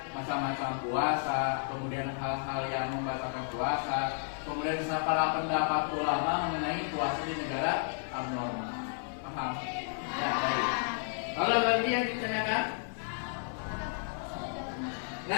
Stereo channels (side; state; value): right; silent; 56 dB below the other